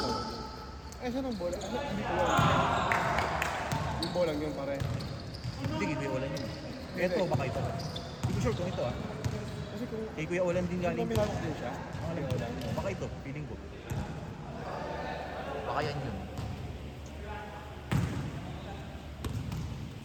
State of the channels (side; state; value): both; identical; correlation 1.00